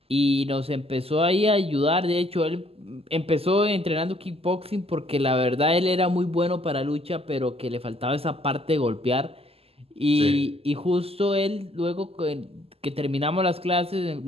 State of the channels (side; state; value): left; late; 0.29 ms